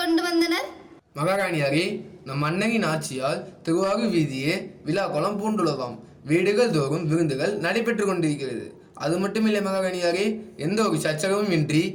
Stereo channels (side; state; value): both; identical; correlation 1.00